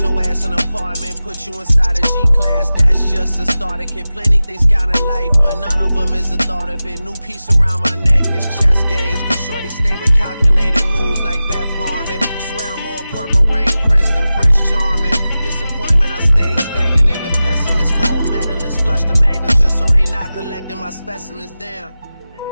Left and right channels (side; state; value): both; inverted; correlation -0.95